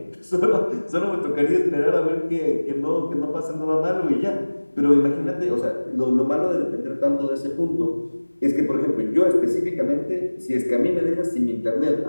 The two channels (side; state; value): both; inverted; correlation -1.00